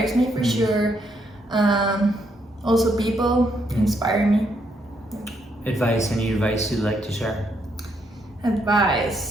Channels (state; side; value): normal; both; correlation 0.75